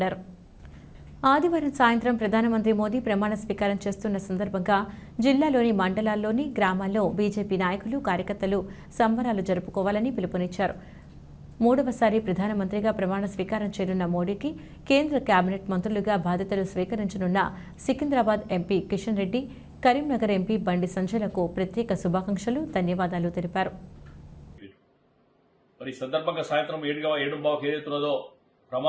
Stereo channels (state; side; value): identical; both; correlation 1.00